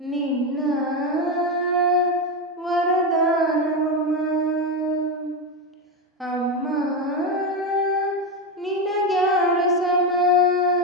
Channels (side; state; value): both; normal; correlation 0.12